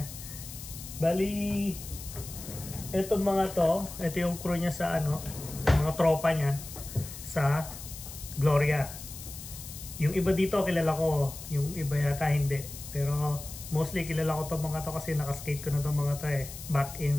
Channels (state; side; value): noise; left; hiss, 12 dB below the sound